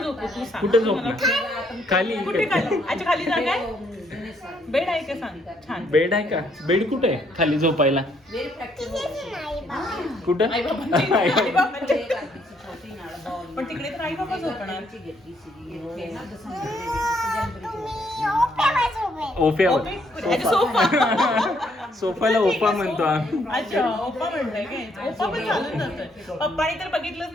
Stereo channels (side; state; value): both; normal; correlation 0.70